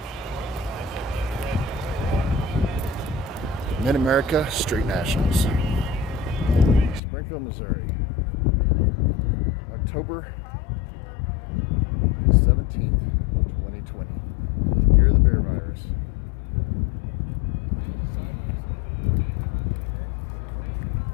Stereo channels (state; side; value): drops out; right; at 7.0 s